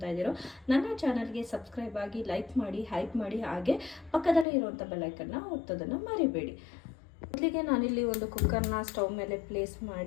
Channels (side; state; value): right; drops out; at 4.5 s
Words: ಇದ್ದೀರೋ ನನ್ನ ಚಾನಲ್ಗೆ ಸಬ್ಸ್ಕ್ರೈಬ್ ಆಗಿ, ಲೈಕ್ ಮಾಡಿ, ಹೈಪ್ ಮಾಡಿ, ಹಾಗೆ ಪಕ್ಕದಲ್ಲೇ ಇರುವಂಥ ಬೆಲ್ಲೈಕನ್ನ ಒತ್ತೋದನ್ನು ಮರಿಬೇಡಿ. ಮೊದಲಿಗೆ ನಾನಿಲ್ಲಿ ಒಂದು ಕುಕ್ಕರ್ನ ಸ್ಟವ್ ಮೇಲೆ ಪ್ಲೇಸ್